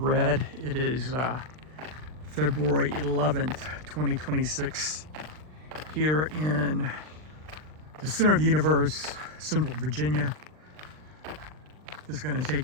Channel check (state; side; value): late; left; 39 ms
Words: It is February 11th, 2026, here in the center of the universe, Central Virginia. Just going to